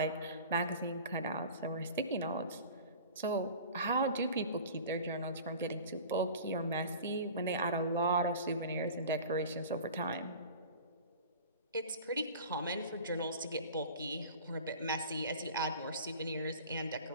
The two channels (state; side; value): inverted; both; correlation -0.40